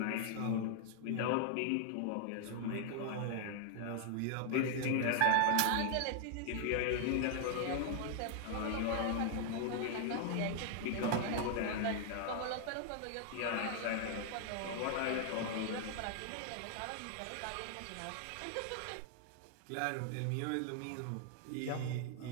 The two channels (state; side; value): different; both; correlation 0.00